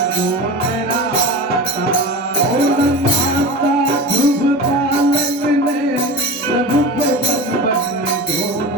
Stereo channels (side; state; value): both; normal; correlation 0.29